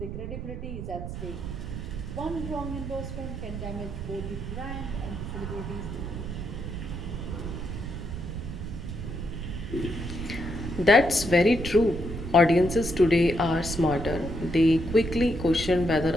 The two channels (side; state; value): right; noise; rumble, 6 dB below the sound